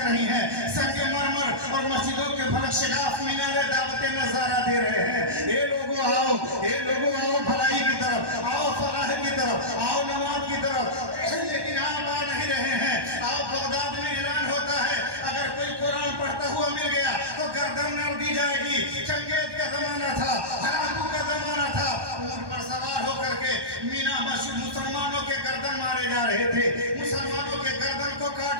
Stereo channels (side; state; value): left; late; 1.1 ms